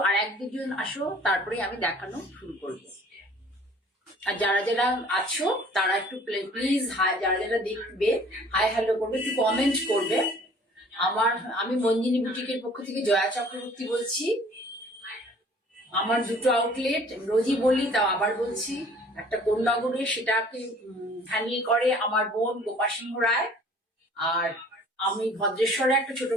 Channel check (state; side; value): normal; both; correlation 0.52